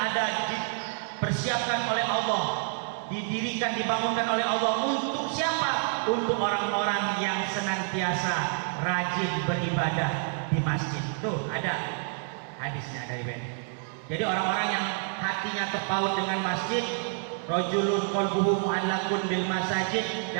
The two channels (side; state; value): left; silent; 59 dB below the other